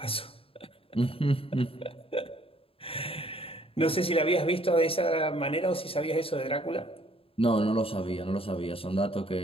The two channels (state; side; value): late; right; 0.27 ms